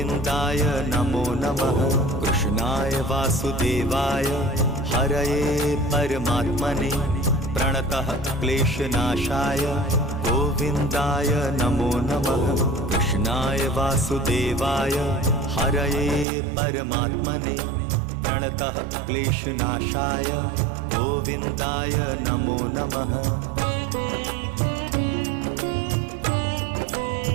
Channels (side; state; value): left; drops out; at 16.2 s